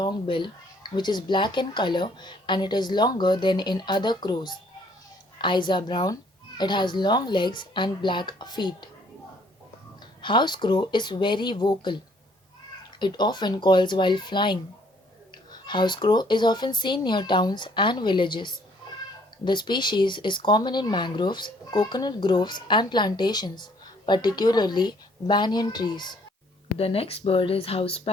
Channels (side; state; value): both; normal; correlation 0.62